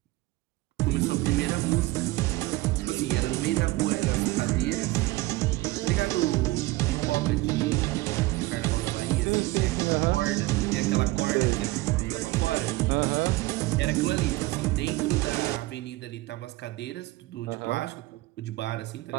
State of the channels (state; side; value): quieter; left; 19.7 dB